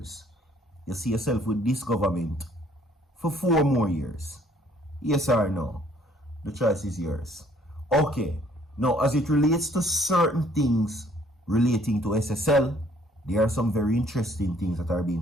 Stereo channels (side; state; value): both; normal; correlation 0.61